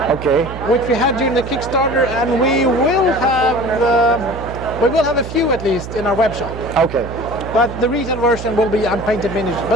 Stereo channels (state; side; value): noise; right; hum, 10 dB below the sound